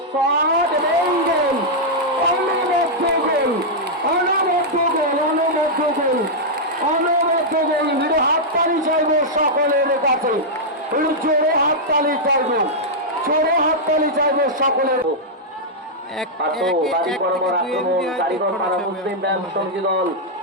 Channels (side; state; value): both; normal; correlation -0.07